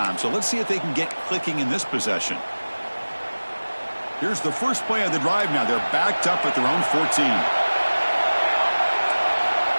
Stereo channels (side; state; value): both; inverted; correlation -1.00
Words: so let's see if they can get clicking in this possession. Here's the first play of the drive now. They're backed up at their own 14.